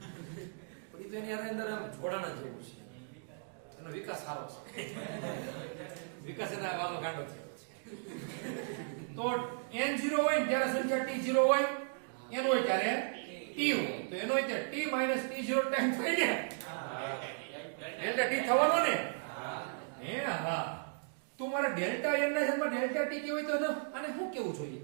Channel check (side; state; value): left; silent; digital silence